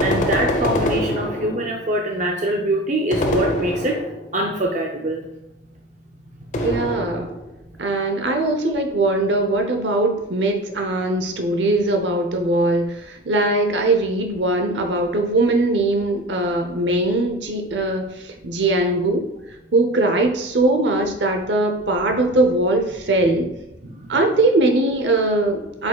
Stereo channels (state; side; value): normal; both; correlation 0.33